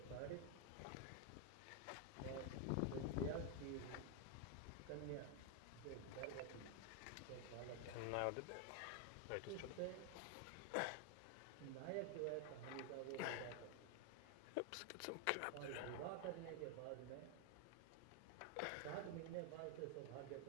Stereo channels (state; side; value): different; both; correlation 0.01